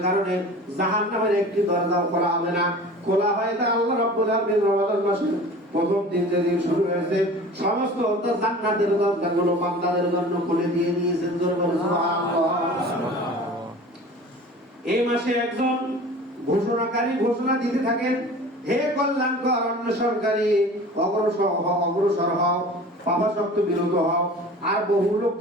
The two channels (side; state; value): both; normal; correlation 0.41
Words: কারণে জাহান্নামের একটি দরজাও খোলা হবে না। খোলা হয় তা আল্লাহ রাব্বুল আলামিন রমাদান মাসের প্রথম দিন যেদিন শুরু হয়েছে সমস্ত জান্নাতের দরজাগুলো বান্দাদের জন্য খুলে দিয়ে দিয়েছেন। সুবহানাল্লাহ। এই মাসে একজন ঘোষণাকারী ঘোষণা দিতে থাকেন, হে কল্যাণকর অন্বেষণকারী, অগ্রসর হও, পাপাসক্ত বিরত হও। আর বহু